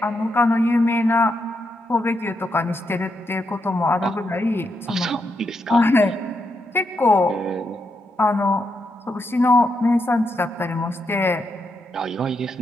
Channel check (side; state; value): both; normal; correlation 0.82